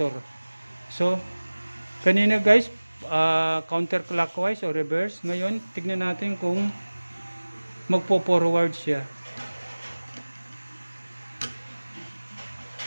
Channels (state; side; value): inverted; both; correlation -1.00